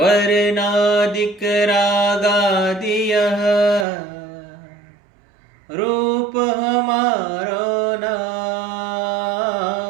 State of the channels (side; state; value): left; drops out; at 3.9 s